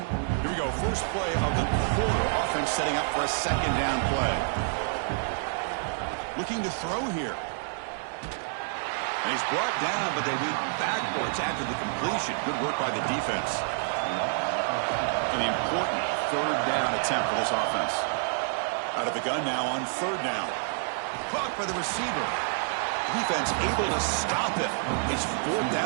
Here we go. First play of the quarter. Offense setting up for a 2nd down play. Looking to throw here. And he's brought down, but they went backwards after the completion. Good work by the defense. An important 3rd down attempt for this offense. Out of the gun now on 3rd down. Caught by the receiver. Defense able to stop it. It's 4th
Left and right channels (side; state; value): left; silent; 59 dB below the other